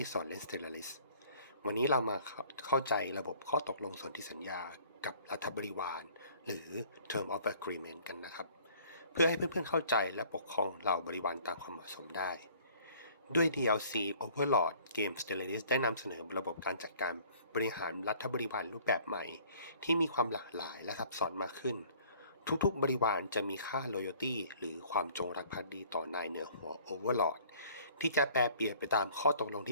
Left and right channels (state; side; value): inverted; both; correlation -0.55